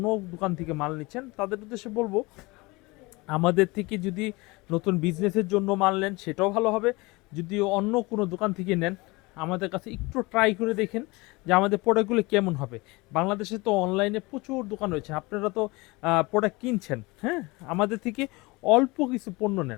দোকান থেকে মাল নিচ্ছেন, তাদের উদ্দেশ্যে বলবো, আমাদের থেকে যদি নতুন বিজনেসের জন্য মাল নেন সেটাও ভালো হবে। যদি অন্য কোনো দোকান থেকে নেন, আমাদের কাছে একটু ট্রাই করে দেখেন যে আমাদের প্রোডাক্টগুলো কেমন হবে। বাংলাদেশে তো অনলাইনে প্রচুর দোকান রয়েছে, আপনারা তো প্রোডাক্ট কিনছেন, হ্যাঁ। আমাদের থেকে অল্প কিছু পণ্য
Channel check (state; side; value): quieter; right; 24.0 dB